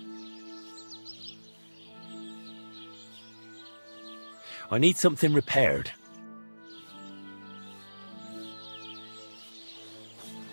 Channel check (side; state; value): both; inverted; correlation -1.00